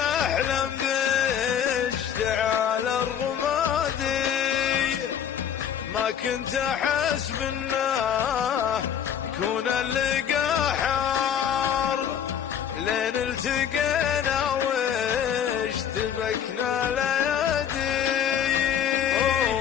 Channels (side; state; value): right; quieter; 8.8 dB